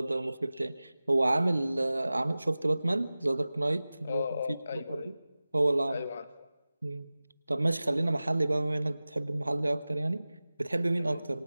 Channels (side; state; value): both; inverted; correlation -0.97